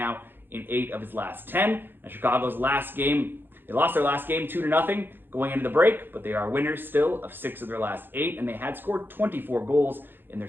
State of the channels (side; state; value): left; late; 0.099 ms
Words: in 8 of his last 10. And Chicago's last game, they lost their last game 2-0 going into the break, but they are winners still of 6 of their last 8, and they had scored 24 goals in their